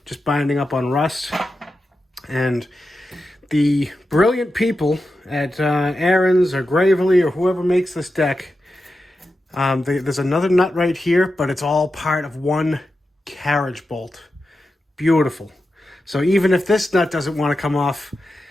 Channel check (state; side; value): normal; both; correlation 0.90